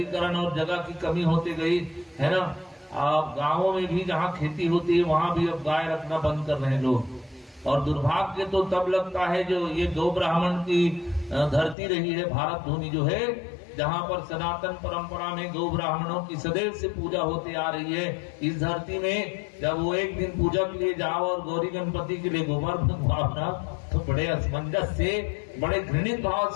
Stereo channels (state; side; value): drops out; right; at 11.8 s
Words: और जगह की कमी होती गई है ना। आप गांवों में भी जहां खेती होती है वहां भी अब गाय रखना बंद कर रहे हैं लोग। और दुर्भाग्य तो तब लगता है जो ये गौ ब्राह्मण की धरती रही है भारत भूमि जो है, जहां पर सनातन परंपरा में गौ ब्राह्मणों की सदैव से पूजा होती आ रही है। इस धरती में जब वो एक दिन पूजा के लिए जाओ और गौरी गणपति के लिए गोबर भावना, तो बड़े असमंजस से, बड़े घृणित भाव